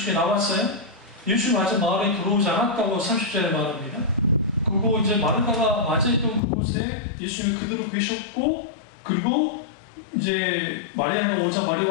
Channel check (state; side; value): drops out; right; at 6.4 s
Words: 나왔어요. 예수 아직 마을에 들어오지 않았다고 30절에 말합니다. 그리고 이제 마르다가 맞이했던 그곳에 예수님이 그대로 계셨고, 그리고 이제 마리아가 오자